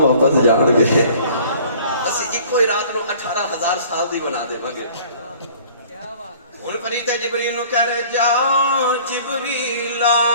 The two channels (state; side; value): inverted; both; correlation -0.51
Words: واپس جان گے۔ اسی ایک ہی رات نو 18,000 سال دی بنا دے گے۔ ہن فرشتے جبریل نو کہہ رہے جا جبریل